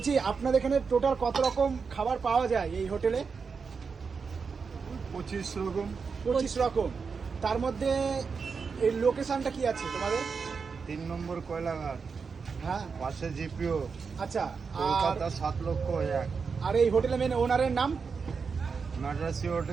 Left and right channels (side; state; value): left; quieter; 5.4 dB